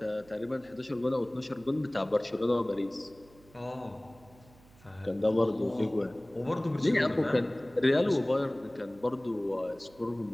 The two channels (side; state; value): right; noise; hum, 26 dB below the sound